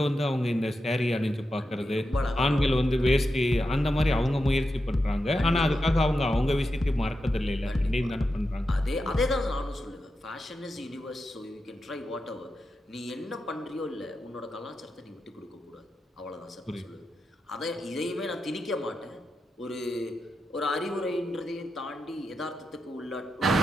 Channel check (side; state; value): both; normal; correlation 0.88